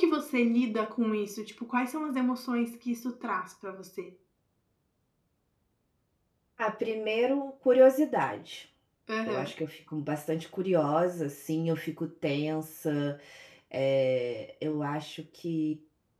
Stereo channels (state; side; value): identical; both; correlation 1.00